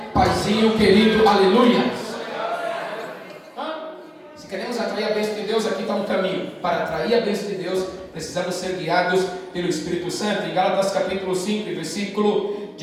Paizinho querido, aleluia. Se queremos atrair a bênção de Deus, aqui está um caminho. Para atrair a bênção de Deus, precisamos ser guiados pelo Espírito Santo. Em Gálatas capítulo 5, versículo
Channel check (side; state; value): both; identical; correlation 1.00